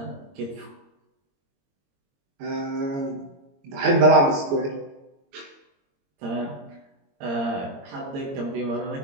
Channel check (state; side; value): late; left; 22 ms